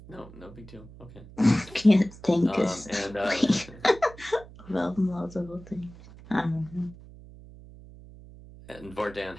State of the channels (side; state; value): right; noise; hum, 19 dB below the sound